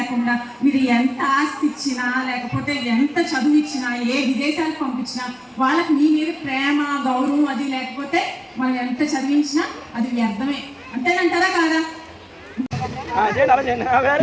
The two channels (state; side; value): identical; both; correlation 1.00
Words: మీరు ఎంత ఆస్తి ఇచ్చినా లేకపోతే ఎంత చదువు ఇచ్చినా, ఏ విదేశాలకు పంపించినా వాళ్ళకి మీ మీద ప్రేమ గౌరవం అది లేకపోతే మనం ఎంత చదివించినా అది వ్యర్థమే. అంతేనంటారా కాదా?